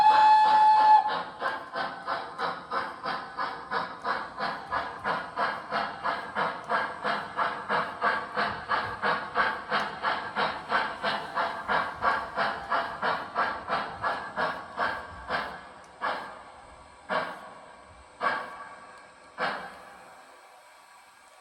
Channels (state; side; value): identical; both; correlation 1.00